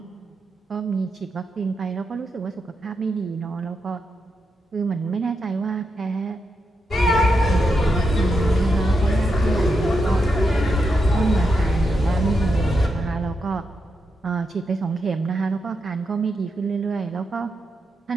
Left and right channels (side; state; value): both; normal; correlation 0.85